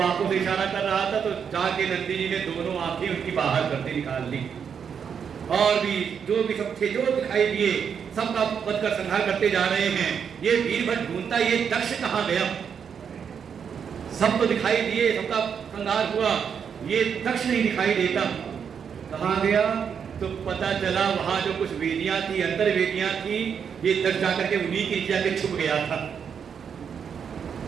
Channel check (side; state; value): left; quieter; 7.2 dB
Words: आंखों से इशारा कर रहा था तो जाके नंदी जी ने दोनों आंखें उनकी बाहर करके निकाल ली। और भी जो भी सब थे जो दिखाई दिए सबका वध कर संहार करते जा रहे हैं। ये वीरभद्र ढूंढता ये दक्ष कहाँ गया, सब तो दिखाई दिए, सबका संहार हुआ, ये दक्ष नहीं दिखाई देता, कहाँ गया? तो पता चला वहां जो कुछ वेदियां थी, अंतर वेदियां थी, ये दक्ष जाकर के उन्हीं के जाके छुप गया था।